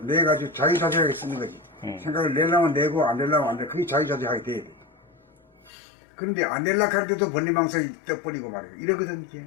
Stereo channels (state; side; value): drops out; right; at 5.7 s